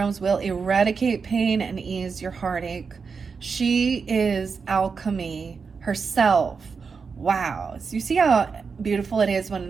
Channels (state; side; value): quieter; left; 5.3 dB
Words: will eradicate pain and ease your heartache. She is alchemy herself. Wow. So you see how beautiful it is